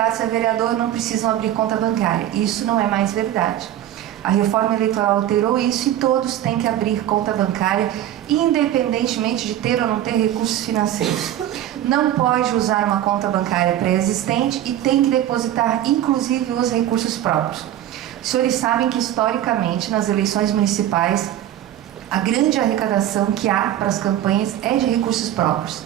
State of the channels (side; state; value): left; quieter; 12.2 dB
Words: a vereador não precisam abrir conta bancária. Isso não é mais verdade. A reforma eleitoral alterou isso e todos têm que abrir conta bancária, independentemente de ter ou não ter recursos financeiros. Não pode usar uma conta bancária pré-existente e tem que depositar, inclusive, os recursos próprios. Os senhores sabem que, historicamente, nas eleições municipais, a grande arrecadação que há para as campanhas é de recursos próprios.